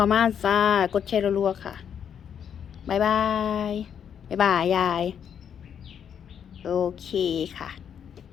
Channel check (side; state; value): right; quieter; 8.3 dB